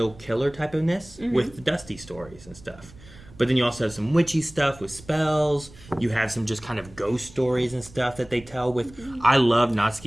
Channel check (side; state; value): right; noise; rumble, 21 dB below the sound